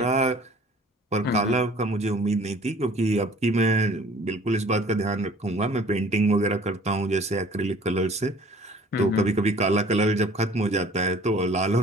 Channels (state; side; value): normal; both; correlation 0.51